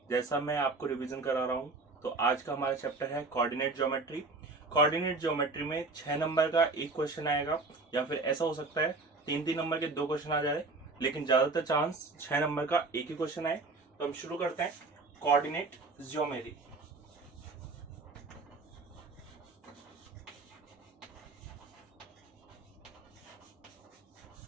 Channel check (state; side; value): quieter; left; 3.6 dB